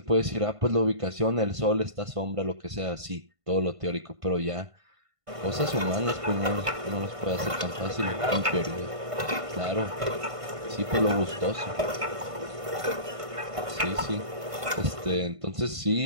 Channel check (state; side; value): late; left; 1.5 ms